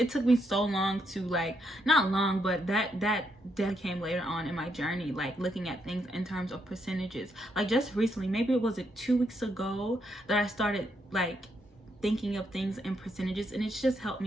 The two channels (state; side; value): normal; both; correlation 0.77